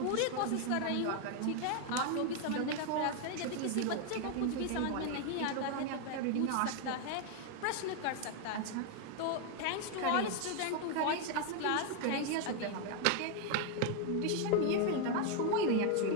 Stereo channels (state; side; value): different; both; correlation 0.01